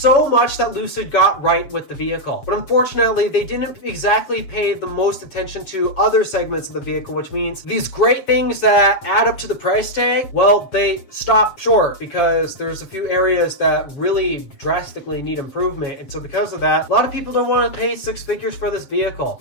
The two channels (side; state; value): right; late; 7.7 ms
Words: much that Lucid got right with the vehicle. But unfortunately, they didn't exactly pay the most attention to other segments of the vehicle, which means these great things that add up to the price tag, well, they stop short because there's a few areas that really drastically need improvement. And so because of that, a lot of people don't want to pay six figures for this vehicle.